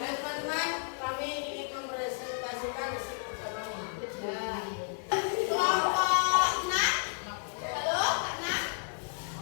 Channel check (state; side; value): silent; right; 56 dB below the other